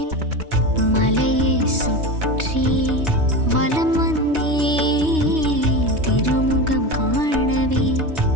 மலையை சுற்றி வலம் வந்தேன் திருமுகம் காணவே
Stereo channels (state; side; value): late; left; 3.2 ms